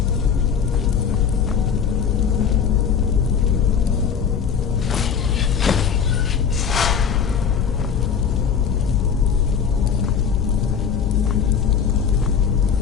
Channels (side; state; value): right; quieter; 7.1 dB